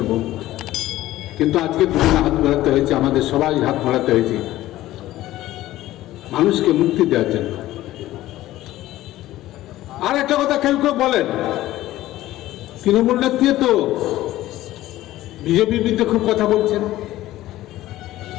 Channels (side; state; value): right; quieter; 15.4 dB